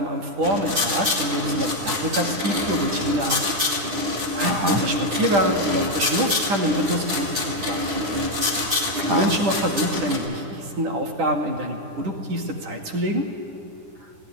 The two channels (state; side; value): late; left; 10 ms